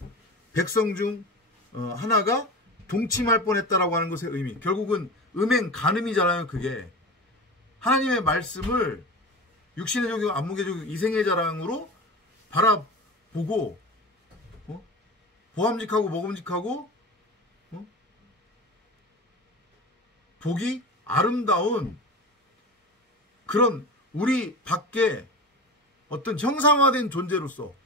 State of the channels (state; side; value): normal; both; correlation 0.29